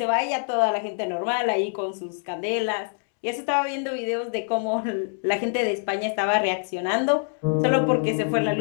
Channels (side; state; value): right; silent; 62 dB below the other